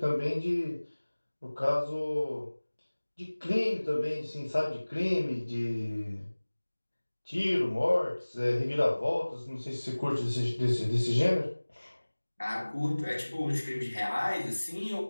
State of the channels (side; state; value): both; inverted; correlation -1.00